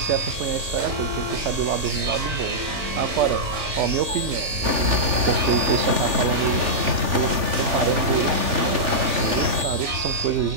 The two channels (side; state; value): left; late; 3.5 ms